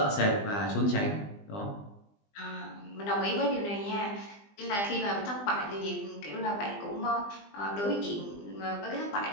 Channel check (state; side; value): late; right; 20 ms